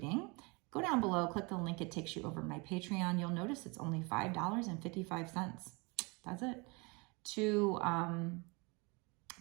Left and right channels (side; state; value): left; quieter; 28.7 dB